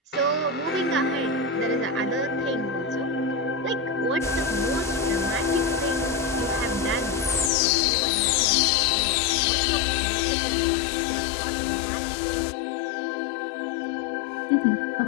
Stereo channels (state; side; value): drops out; right; at 7.5 s